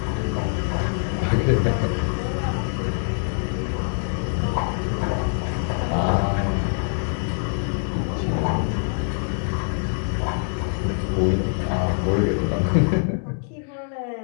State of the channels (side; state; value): right; silent; 63 dB below the other